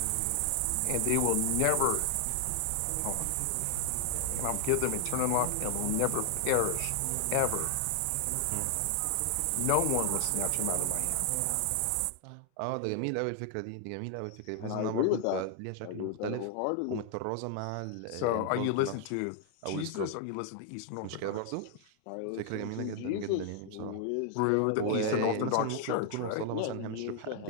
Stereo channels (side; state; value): both; different; correlation 0.00